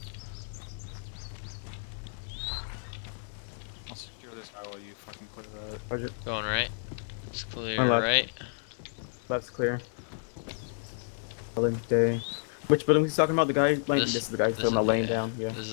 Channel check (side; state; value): right; silent; digital silence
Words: I'll secure this guy while you fucking clear that. Okay. Going right. It's clear Left. right. Left's clear. Building day. Which building he's talking about? The guy? This is the guy still not laying down. Yeah. This